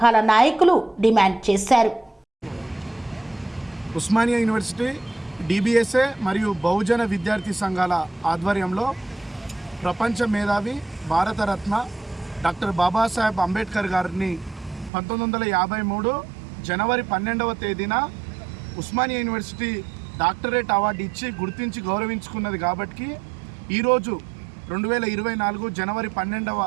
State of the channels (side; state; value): left; drops out; at 14.9 s